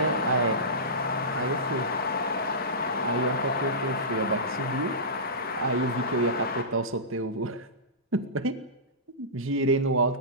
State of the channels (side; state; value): both; normal; correlation -0.20